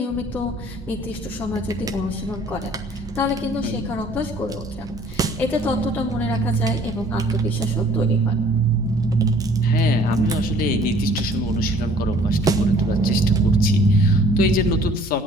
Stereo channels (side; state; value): both; normal; correlation 0.55